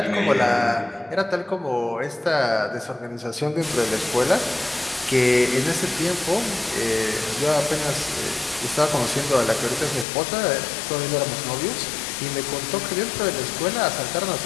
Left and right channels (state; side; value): drops out; right; at 10.1 s